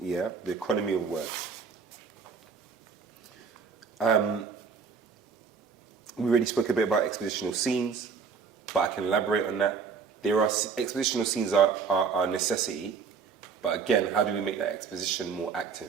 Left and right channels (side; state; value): left; quieter; 5.7 dB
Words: the economy of words. We already spoke a bit about expositional scenes, but I can elaborate on that. Expositional scenes are a necessity, but again, how do we make that exposition more